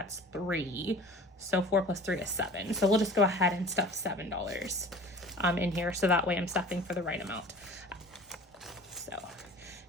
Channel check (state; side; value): normal; both; correlation 0.42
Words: 3. So 4 plus 3 is 7. So we'll just go ahead and stuff $7 in here. So that way I'm stuffing for the right amount. So